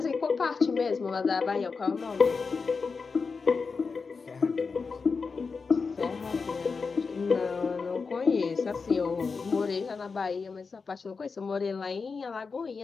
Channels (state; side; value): quieter; right; 4.8 dB